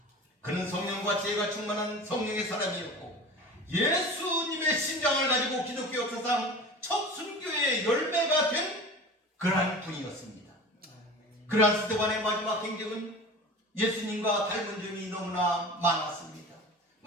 그는 성령과 지혜가 충만한 성령의 사람이었고 예수님의 심장을 가지고 기독교 역사상 첫 순교의 열매가 된 그러한 분이었습니다. 그러한 스데반의 마지막 행적은 예수님과 닮은 점이 너무나 많았습니다.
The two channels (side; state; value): both; normal; correlation 0.36